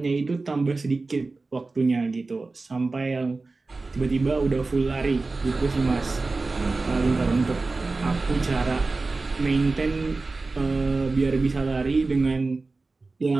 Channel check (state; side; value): quieter; left; 3.6 dB